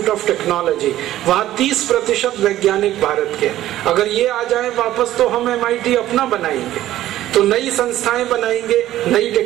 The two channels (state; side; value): quieter; left; 13.9 dB